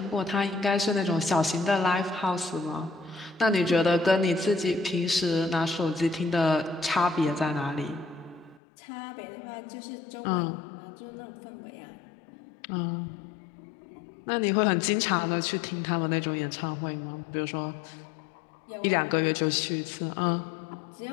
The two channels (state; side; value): drops out; right; at 8.6 s